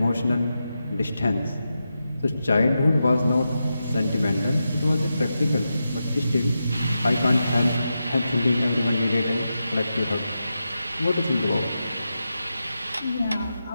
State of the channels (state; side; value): inverted; both; correlation -0.89